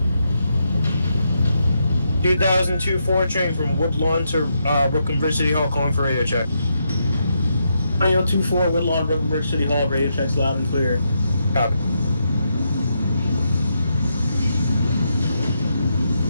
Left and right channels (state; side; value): inverted; both; correlation -0.81